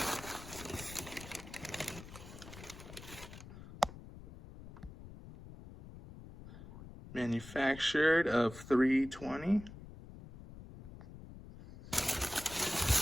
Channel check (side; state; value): left; noise; rumble, 15 dB below the sound